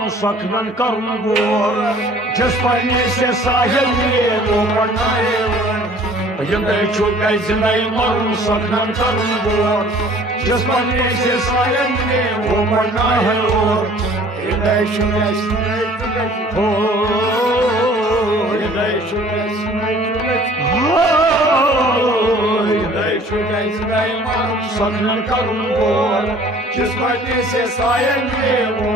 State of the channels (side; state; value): both; normal; correlation 0.52